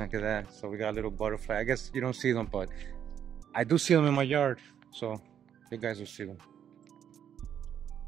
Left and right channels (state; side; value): quieter; left; 9.1 dB